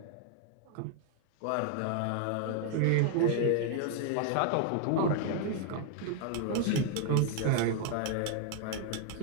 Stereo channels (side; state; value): both; different; correlation 0.00